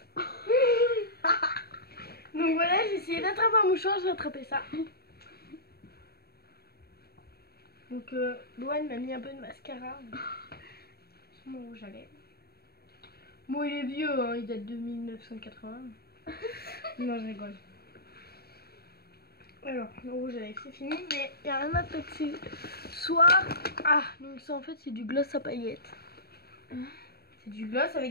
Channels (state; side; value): late; right; 0.46 ms